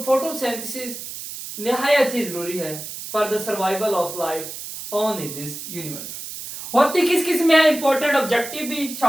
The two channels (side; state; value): right; noise; hiss, 9 dB below the sound